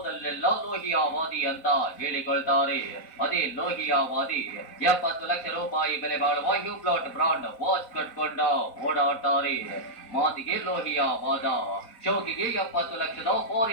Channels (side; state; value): right; late; 4.1 ms